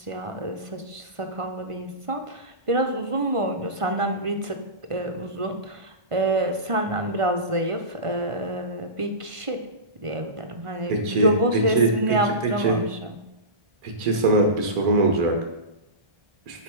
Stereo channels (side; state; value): left; late; 1.5 ms